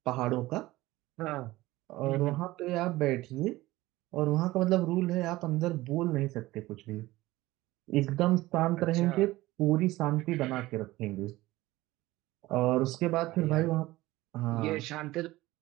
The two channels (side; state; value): left; quieter; 18.1 dB